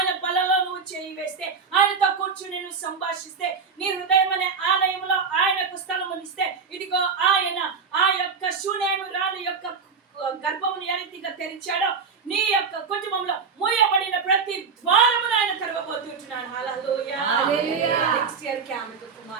బలలో నువ్వు చేయి వేస్తే, ఆయనతో కూర్చుని నువ్వు సంభాషిస్తే, నీ హృదయం అనే ఆలయంలో ఆయనకు స్థలమునిస్తే, ఇదిగో ఆయన ఆ యొక్క శూనేము రాణి యొక్క గర్భమును ఏ రీతిగా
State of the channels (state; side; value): quieter; left; 5.5 dB